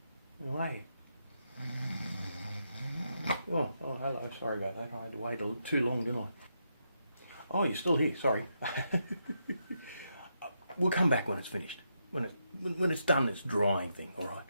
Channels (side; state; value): both; inverted; correlation -0.82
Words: And wait. Oh, hello. Sorry about that. I had to wait too long, didn't I? Oh, you're still here. Sorry. We'll come back when it's finished. When it's done, this drying thing. All right.